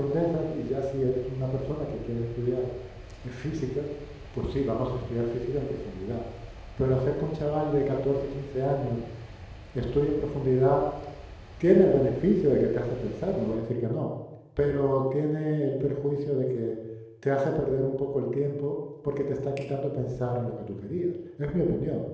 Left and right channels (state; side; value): identical; both; correlation 1.00